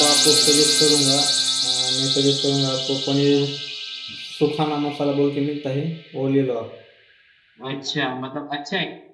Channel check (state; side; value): identical; both; correlation 1.00